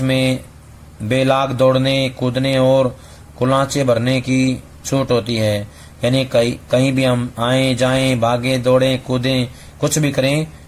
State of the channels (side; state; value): both; identical; correlation 1.00